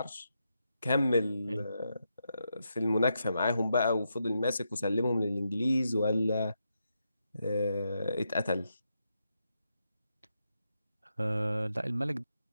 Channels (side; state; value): both; inverted; correlation -0.84